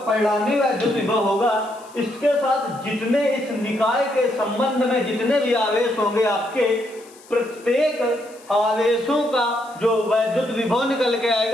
परिणामी वैद्युत विभव होगा, इसके साथ जितने इस निकाय के संबंध में जितने भी आवेश होंगे आपके, प्रत्येक आवेशों का जो वैद्युत विभव निकल के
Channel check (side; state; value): left; noise; hiss, 24 dB below the sound